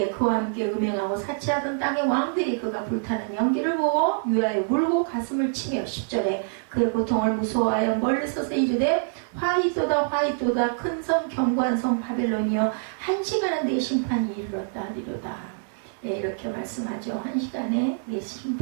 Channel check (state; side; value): silent; left; 61 dB below the other